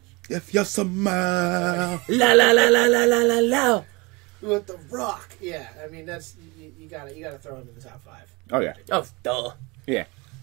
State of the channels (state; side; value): quieter; left; 26.0 dB